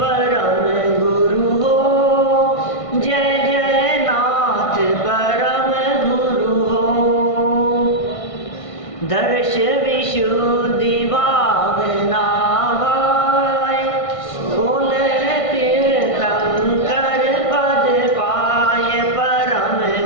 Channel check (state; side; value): late; right; 1.5 ms